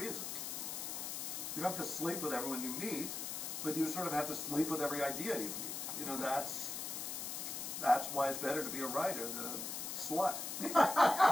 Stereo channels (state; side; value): noise; left; hiss, 4 dB below the sound